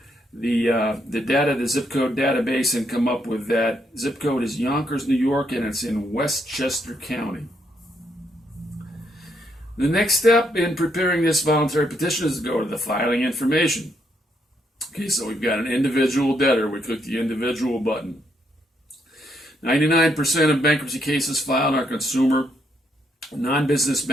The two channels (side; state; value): both; normal; correlation 0.75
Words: the zip code database and come up with that. Zip code is Yonkers, New York, and it's in Westchester County. The next step in preparing this voluntary petition is to go to the filing information. Okay, so we've got an individual debtor. We click the individual button. 99% of bankruptcy cases filed are consumer, non-business